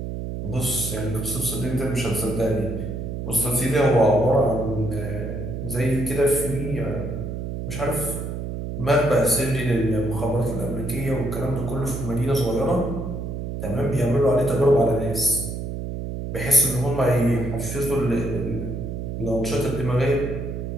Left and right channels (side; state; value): right; noise; hum, 5 dB below the sound